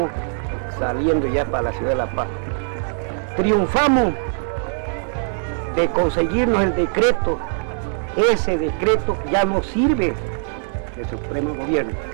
saliendo ya para la ciudad de La Paz. Triunfamos de conseguirnos el decreto. Ese decreto ya no sirve del Supremo Gobierno.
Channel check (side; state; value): left; silent; 65 dB below the other